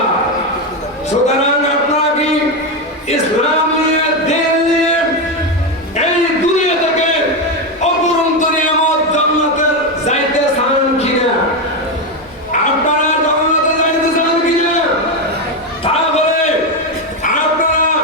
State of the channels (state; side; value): normal; both; correlation 0.10